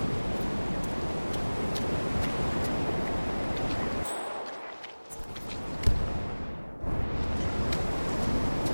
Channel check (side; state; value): both; inverted; correlation -1.00